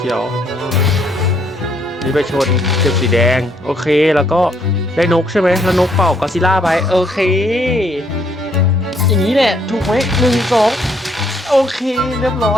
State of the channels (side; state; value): both; normal; correlation 0.69